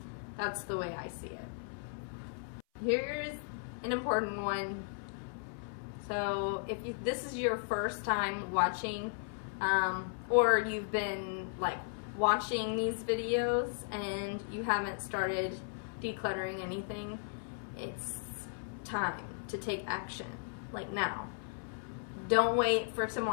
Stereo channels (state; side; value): silent; right; 54 dB below the other